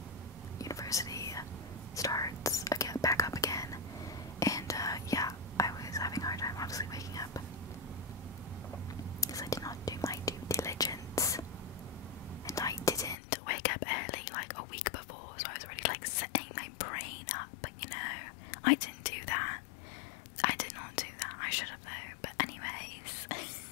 university starts again, back up again, and yeah, I was having a hard time obviously waking up because I did not do my due diligence, and I didn't wake up early like a week before, so I was already like setting my brain up, you know. I didn't do that. I did not do that. I should have though. But anyways,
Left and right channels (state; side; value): drops out; right; at 13.2 s